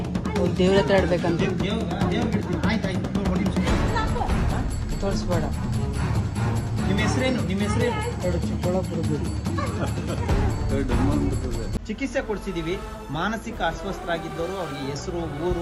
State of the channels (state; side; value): identical; both; correlation 1.00